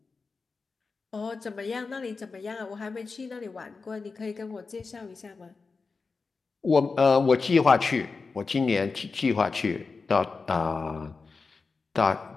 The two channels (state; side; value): quieter; right; 4.4 dB